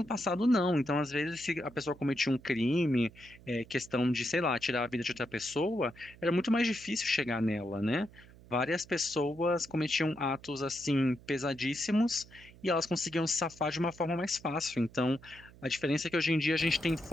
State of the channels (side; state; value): right; noise; hum, 22 dB below the sound